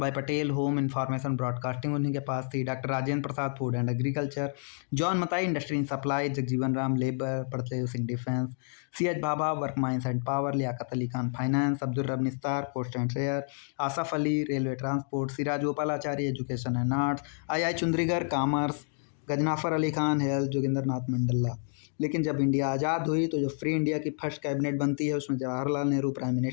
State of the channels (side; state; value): right; silent; 58 dB below the other